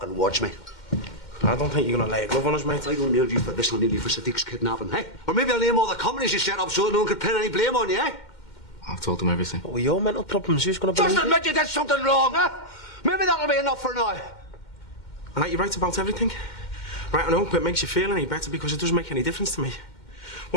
watch me. I don't think you're gonna lay a glove on us, mate. I don't nail you for this, I'll nail you for Sadiq's kidnapping, eh? Or maybe I'll name all the companies you set up so no one could pin any blame on you, eh? I've told him everything. What were your mental problems? Who's going to believe Just admit you did something wrong, huh? Maybe that'll be enough for now. All right, you're right about everything. Right, I hope it makes you feel any better because it doesn't make any difference to me.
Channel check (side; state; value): right; late; 2.1 ms